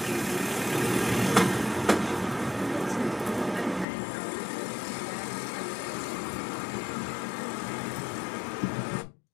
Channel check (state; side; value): drops out; right; at 3.9 s